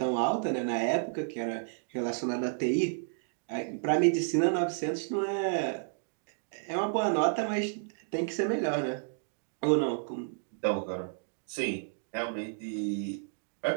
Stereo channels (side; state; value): left; silent; digital silence